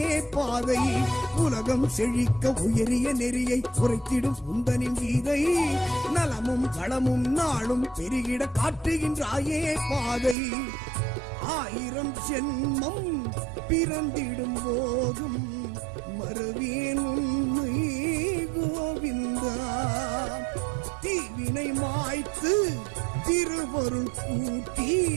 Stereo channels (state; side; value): drops out; left; at 10.4 s